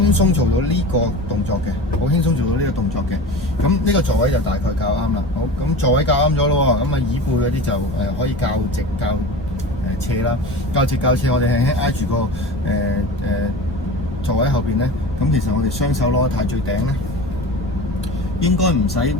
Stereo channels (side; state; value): both; normal; correlation 0.32